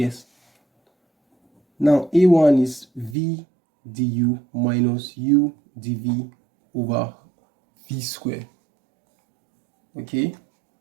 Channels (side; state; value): left; drops out; at 3.2 s